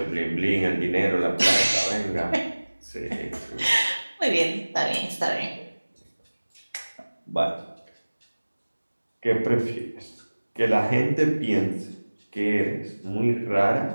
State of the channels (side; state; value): both; inverted; correlation -1.00